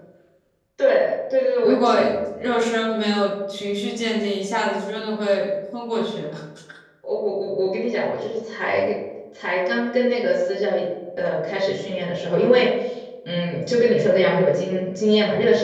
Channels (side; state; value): both; identical; correlation 1.00